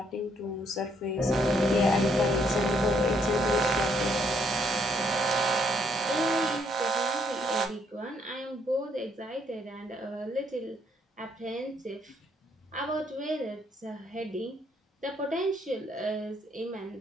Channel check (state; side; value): normal; both; correlation 0.70